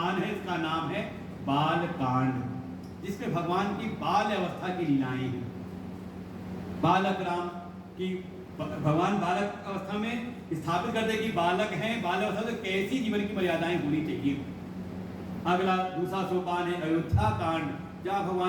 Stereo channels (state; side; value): identical; both; correlation 1.00